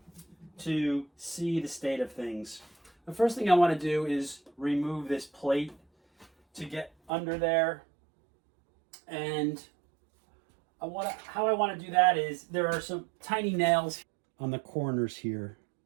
to see the state of things. The first thing I want to do is remove this plate to get under there, and how I want to do that is there are some tiny nails on the corners here.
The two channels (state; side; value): drops out; left; at 7.1 s